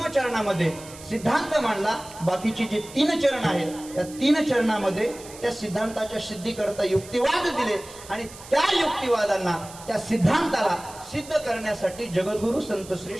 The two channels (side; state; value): right; noise; hiss, 17 dB below the sound